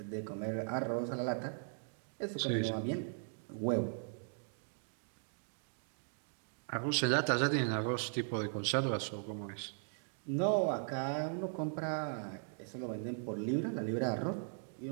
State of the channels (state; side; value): silent; left; digital silence